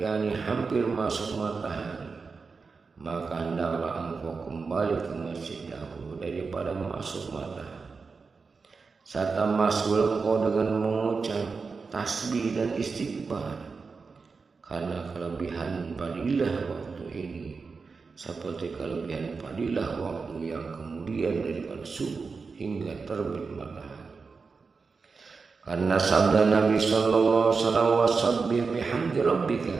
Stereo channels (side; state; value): left; quieter; 4.7 dB